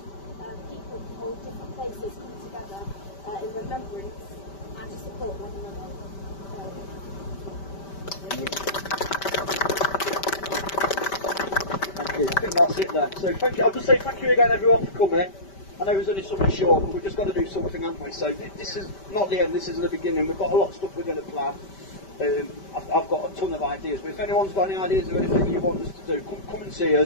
people from all different places come together in remembrance and to support one another. Thank you. I think that's it then. So thank you. I'll just say thank you again everyone for coming. I know it was only something short, but we've just got to do something, haven't we? So this is not the end, this is the beginning. We've got a lot of stuff we're going to plan. I've got a ton of ideas, but if anyone's got any ideas or anything you want us to do, come and see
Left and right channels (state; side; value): late; right; 5.1 ms